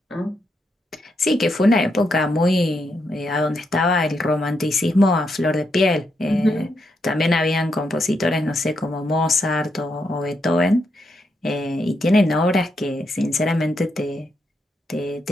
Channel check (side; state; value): both; normal; correlation 0.81